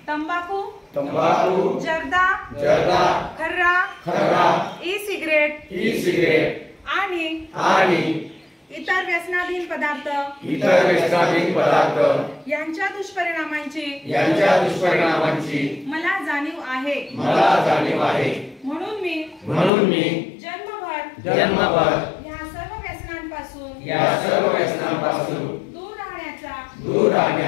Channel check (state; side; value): drops out; right; at 19.7 s